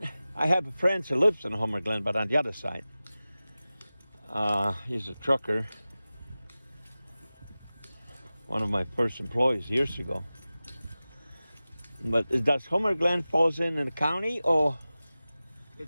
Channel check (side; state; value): both; inverted; correlation -0.97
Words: I have a friend who lives in Homer Glen, but on the other side. He's a trucker. One of my first employees years ago. But does Homer Glen falls in the county, or?